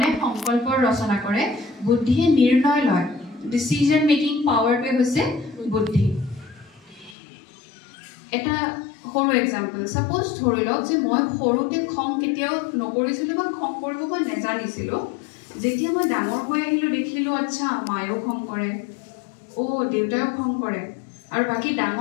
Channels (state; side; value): drops out; right; at 7.2 s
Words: সংকল্পৰ ৰচনা কৰে বুদ্ধিয়ে নিৰ্ণয় লয় ডিসিজন মেকিং পাৱাৰটো হৈছে বুদ্ধি এটা সৰু এক্সাম্পল সাপোজ ধৰি লওক যে মই সৰুতে খং কেতিয়াও নকৰিছিলো বা খং কৰিব বা নেজানিছিলো যেতিয়া মই ডাঙৰ হৈ আহিলো দেখিলো আচ্ছা মায়েও খং কৰে ও দেউতাও খং কৰে আৰু বাকি